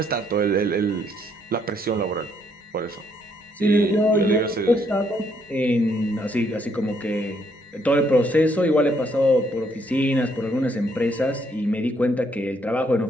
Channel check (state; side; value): normal; both; correlation 0.71